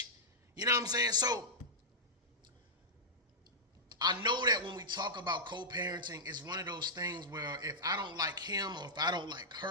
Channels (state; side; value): normal; both; correlation -0.11